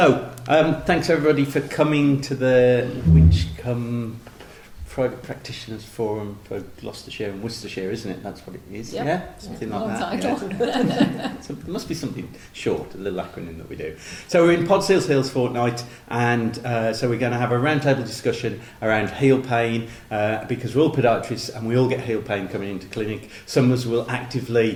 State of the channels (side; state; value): both; identical; correlation 1.00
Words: thanks everybody for coming to the Winchcombe Private Practitioners Forum for Gloucestershire and Worcestershire, isn't it? That's what it is, yep. Yeah? Something like that. Yeah. So it must be something short, a little acronym that we do. So we're in Pod Seals Hills fortnight, and so we're going to have a roundtable discussion around heel pain, because we're all podiatrists and we all get heel pain coming into clinic. Some of us will